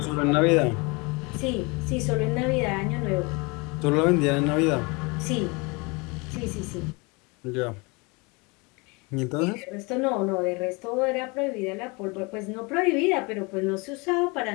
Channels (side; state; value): right; quieter; 28.1 dB